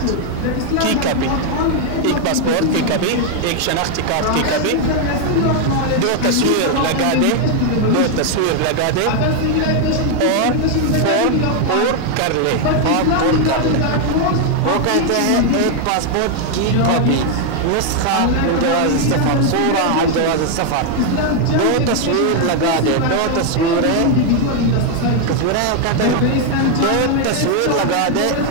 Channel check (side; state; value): both; different; correlation 0.01